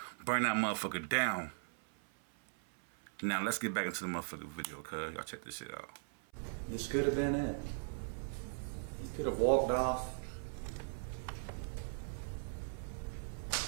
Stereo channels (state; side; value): silent; left; 52 dB below the other